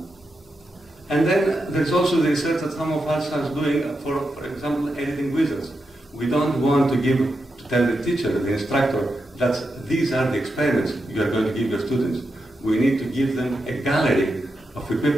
And then there's also the research that some of us are doing for example, editing wizards. We don't want to give to tell the teacher, the instructor, that these are the experiments you are going to give your students. We need to give them a gallery of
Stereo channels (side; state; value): both; normal; correlation 0.87